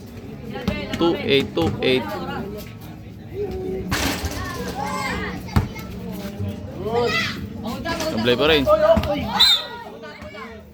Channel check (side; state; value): both; identical; correlation 1.00